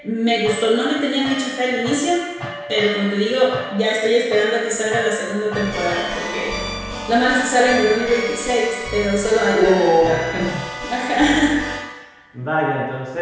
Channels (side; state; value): both; identical; correlation 1.00